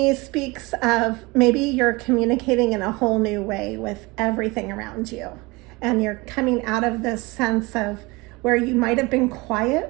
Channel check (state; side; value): quieter; left; 24.2 dB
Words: speaks of maybe you're communicating in a whole new way with everything around you, and you're coming out of this sense of where you might have been